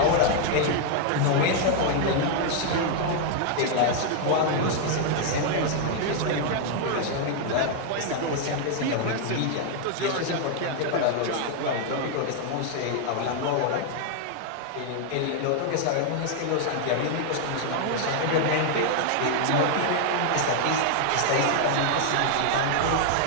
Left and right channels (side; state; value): both; different; correlation 0.00